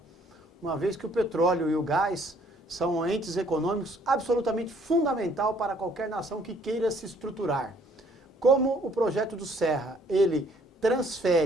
uma vez que o petróleo e o gás são entes econômicos absolutamente fundamental para qualquer nação que queira se estruturar. Como o projeto do Serra, ele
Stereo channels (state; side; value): normal; both; correlation 0.62